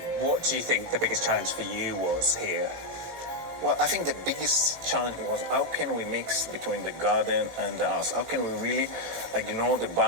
What do you think the biggest challenge for you was here? Well, I think the biggest challenge was how can we mix between the garden and the house? How can we really ignore the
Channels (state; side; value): late; left; 18 ms